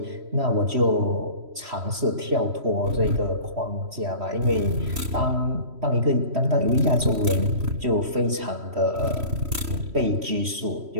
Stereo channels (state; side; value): late; left; 3.1 ms